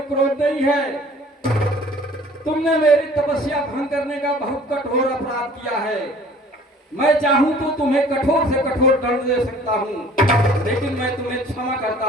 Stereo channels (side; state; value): both; normal; correlation 0.51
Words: क्रोध नहीं है। तुमने मेरी तपस्या भंग करने का बहुत कठोर अपराध किया है। मैं चाहूं तो तुम्हें कठोर से कठोर दंड दे सकता हूं, लेकिन मैं तुम्हें क्षमा करता